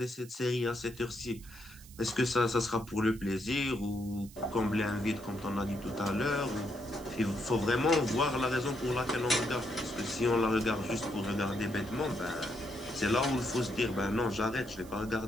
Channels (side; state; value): right; noise; hiss, 21 dB below the sound